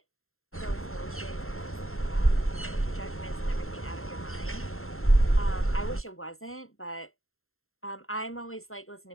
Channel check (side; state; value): right; late; 0.62 ms